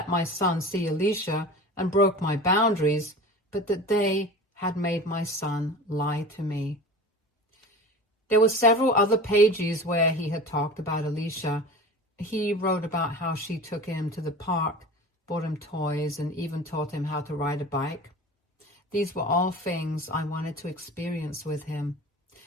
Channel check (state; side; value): normal; both; correlation 0.36